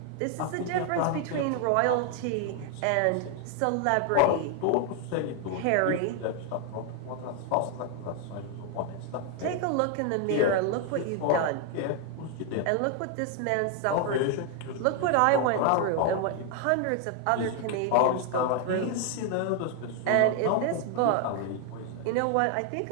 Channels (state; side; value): different; both; correlation 0.00